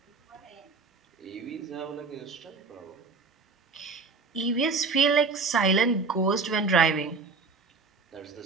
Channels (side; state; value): left; quieter; 4.3 dB